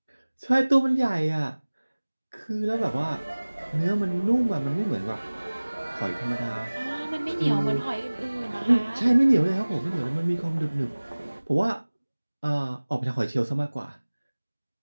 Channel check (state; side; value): inverted; both; correlation -1.00